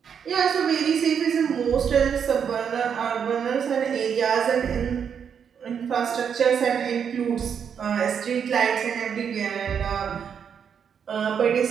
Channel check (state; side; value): quieter; left; 7.5 dB